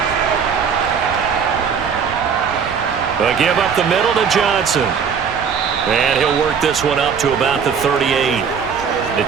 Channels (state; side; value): quieter; left; 6.6 dB